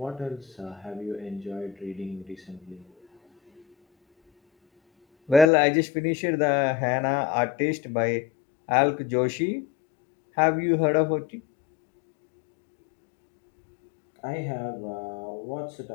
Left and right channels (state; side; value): drops out; right; at 5.5 s